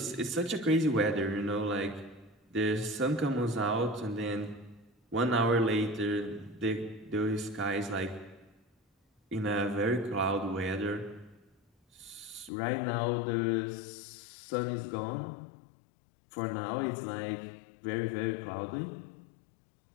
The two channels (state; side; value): drops out; right; at 12.5 s